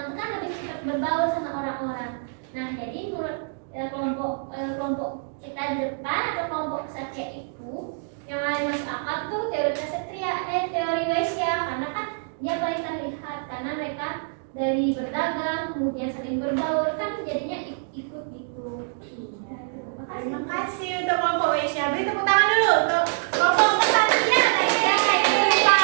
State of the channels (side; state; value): left; silent; digital silence